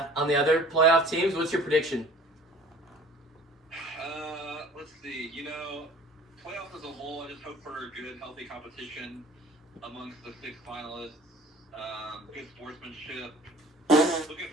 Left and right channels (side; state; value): both; normal; correlation 0.48